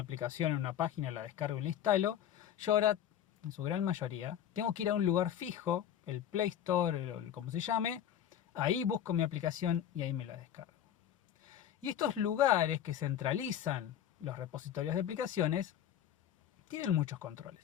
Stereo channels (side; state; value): right; quieter; 10.2 dB